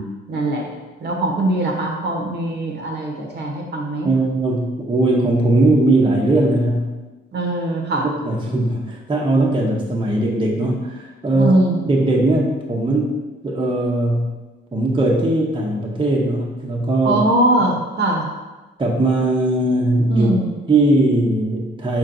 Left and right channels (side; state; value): both; normal; correlation 0.64